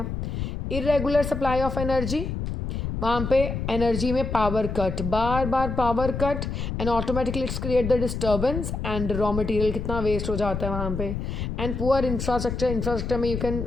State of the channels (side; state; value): left; noise; rumble, 4 dB below the sound